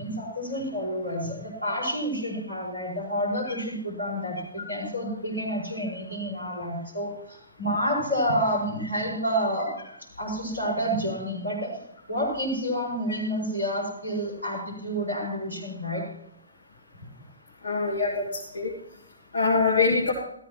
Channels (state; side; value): inverted; both; correlation -0.33